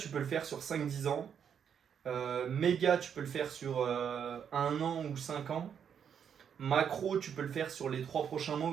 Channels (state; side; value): quieter; left; 7.9 dB